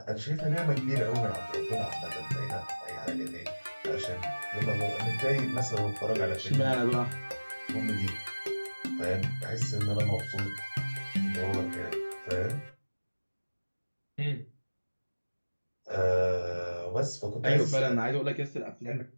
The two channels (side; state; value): both; inverted; correlation -1.00